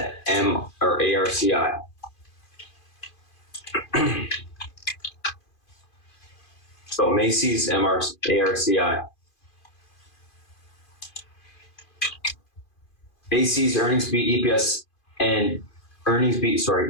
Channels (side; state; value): right; late; 2.5 ms